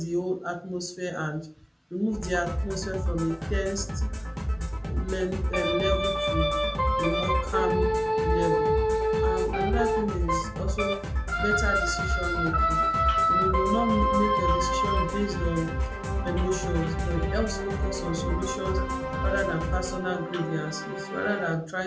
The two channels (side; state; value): both; identical; correlation 1.00